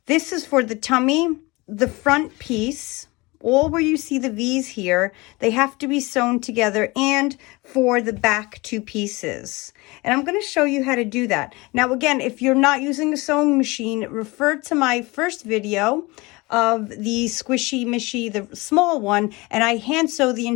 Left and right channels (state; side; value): quieter; right; 23.9 dB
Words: this is for the tummy, the front piece, all where you see the V's here, they have to be sewn together, and for the back two pieces. And I'm going to show you how to do that. Now, again, if you're not using a sewing machine, refer to my first video of the SquishyMishy, the small one, and I hand sew the